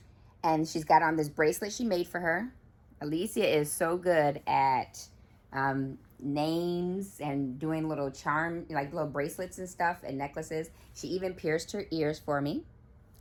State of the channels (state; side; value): identical; both; correlation 1.00